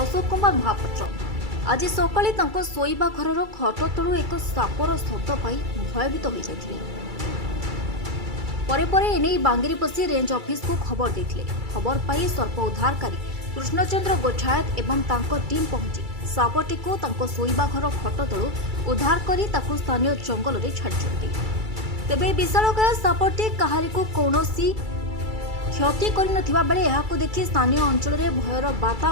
अशोक कुमार महापात्र आज सकाळे तांको शोइबा घरर खट तलु एक सापर शब्द पाई भयभीत हो जाइथिले। परे परे एने बांगीरपोशी रेंज ऑफिस को खबर देथिले। खबर पाई सर्प उद्धारकारी कृष्णचंद्र गोठायत एवं तांको टीम पहुंची सापटी को तांको शोइबा घर खट तलु उद्धार करी ताकु स्थानीय जंगल रे छाडिछन्ती। तेबे विशालकाय सापटी काहारी को कौनसी क्षति करि नथिबा बेले एहाको देखि स्थानीय अंचल रे भयर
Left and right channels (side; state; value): left; late; 2.3 ms